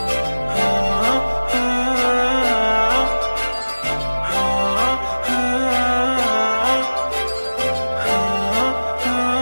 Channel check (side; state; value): both; inverted; correlation -1.00